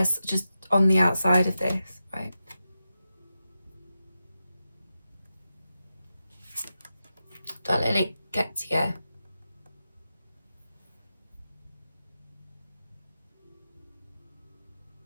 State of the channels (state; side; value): inverted; both; correlation -0.90